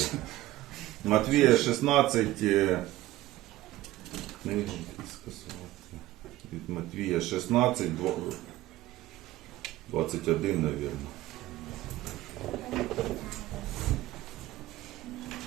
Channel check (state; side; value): quieter; left; 16.3 dB